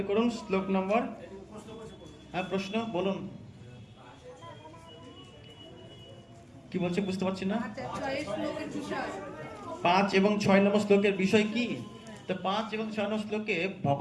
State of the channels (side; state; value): both; identical; correlation 1.00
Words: করুন শ্লোক নম্বর। হ্যাঁ, প্রশ্ন বলুন, কি বলছে বুঝতে পারছি না। 5 এবং 6 নম্বর শ্লোকের বিষয় কি? তো 5 এবং 6 নম্বর শ্লোকে